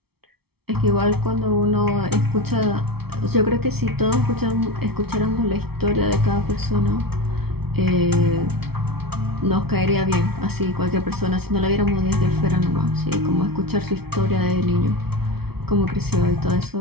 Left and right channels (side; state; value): left; late; 0.96 ms